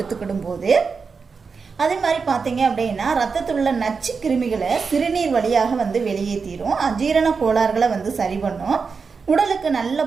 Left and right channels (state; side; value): quieter; left; 5.1 dB